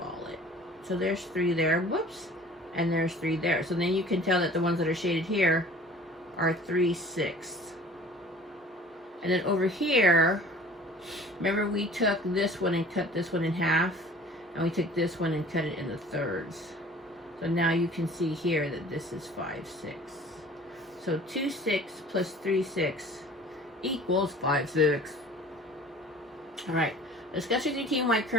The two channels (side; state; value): both; normal; correlation 0.47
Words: it. So there's 3 there, whoops, and there's 3 there. So then you can tell that the ones that are shaded here are 3 6ths. And then over here, remember we took this one and cut this one in half, and we took this one and cut it into thirds. So now you can see here that this is 5 6. So 2 6 plus 3 6 equals 5 6. All right, Discuss with your team why